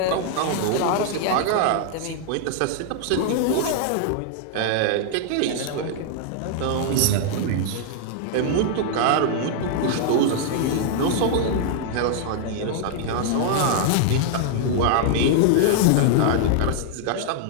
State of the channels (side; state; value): both; different; correlation -0.01